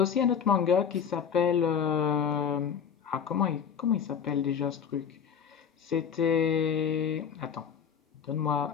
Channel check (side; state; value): right; quieter; 7.4 dB